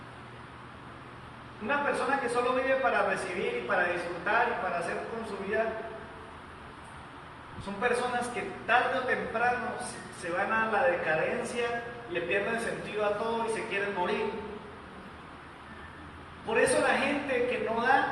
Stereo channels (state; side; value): identical; both; correlation 1.00